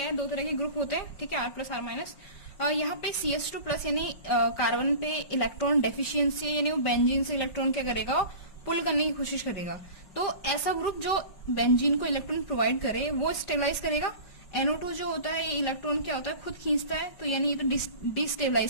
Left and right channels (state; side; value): late; right; 5.4 ms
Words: है, दो तरह के ग्रुप होते हैं, ठीक है, R प्लस R माइनस। यहाँ पे CH2 प्लस यानी कार्बन पे इलेक्ट्रॉन डेफिशिएंसी, यानी वो बेंजीन से इलेक्ट्रॉन क्या करेगा, पुल करने की कोशिश करेगा। तो ऐसा ग्रुप जो बेंजीन को इलेक्ट्रॉन प्रोवाइड करे वो स्टेबलाइज करेगा। NO2 जो होता है ये इलेक्ट्रॉन क्या होता है, खुद खींचता है, तो यानी ये तो